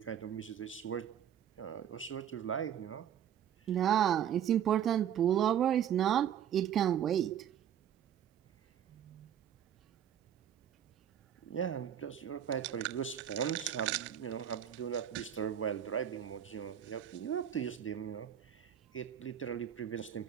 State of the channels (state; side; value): quieter; left; 9.7 dB